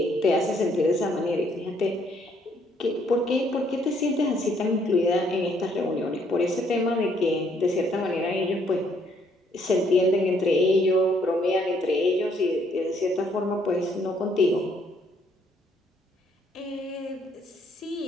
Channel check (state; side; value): normal; both; correlation 0.68